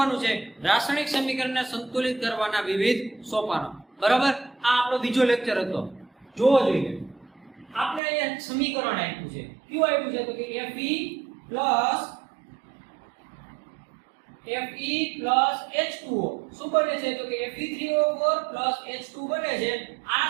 છે રાસાયણિક સમીકરણને સંતુલિત કરવાના વિવિધ સોપાનો. બરાબર. આ આપણો બીજો લેક્ચર હતો. જોવો જોઈએ. આપણે અહીંયા સમીકરણ આપ્યું છે. કયું આપ્યું છે? તો કે Fe plus H2O શું બને છે? તો કે Fe3O4 plus H2 બને છે. આ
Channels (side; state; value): left; drops out; at 8.0 s